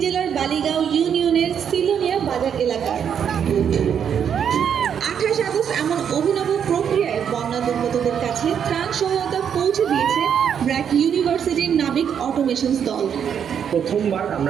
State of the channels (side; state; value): left; quieter; 8.1 dB